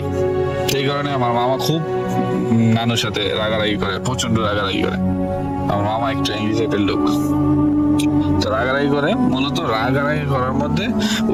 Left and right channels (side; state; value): both; identical; correlation 1.00